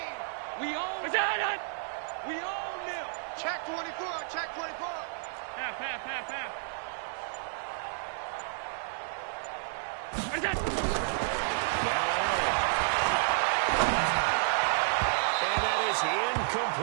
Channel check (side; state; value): left; silent; 57 dB below the other